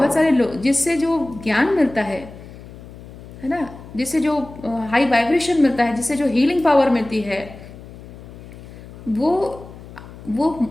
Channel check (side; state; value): left; noise; hum, 16 dB below the sound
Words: सारे लोग, जिससे जो ज्ञान मिलता है ना, जिससे जो हाई वाइब्रेशन मिलता है, जिससे जो हीलिंग पावर मिलती है, वो